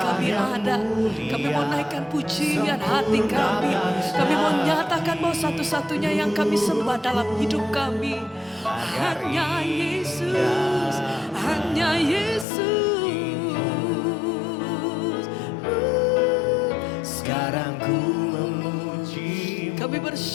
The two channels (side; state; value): right; drops out; at 12.5 s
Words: ada, kami mau naikkan pujian hati kami. Kami mau nyatakan bahwa satu-satunya yang kami sembah dalam hidup kami hanya Yesus, hanya Yesus. Sekarang ku memuji, kami